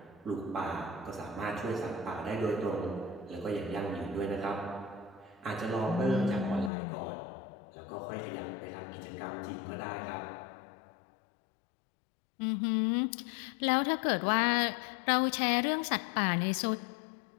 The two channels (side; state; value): right; drops out; at 6.7 s